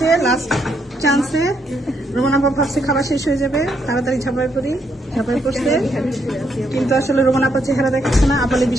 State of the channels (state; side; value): normal; both; correlation 0.76